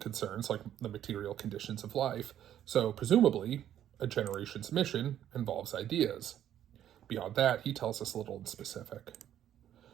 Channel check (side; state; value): left; quieter; 10.9 dB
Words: like the material conditions of life, so presumably, a generation's mission involves ideas. Beyond that, he tells us little in specific.